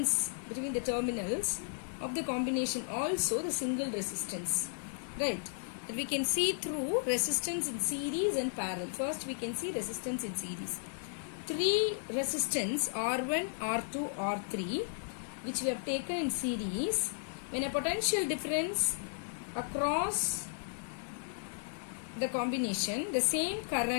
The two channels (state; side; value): silent; right; digital silence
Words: between the terminals of the combination also the single resistance, right? That we can see through resistance in series and parallel. First we can see resistance in series. Three resistance R1, R2, R3 which we have taken in series. When a potential difference across the combination, the same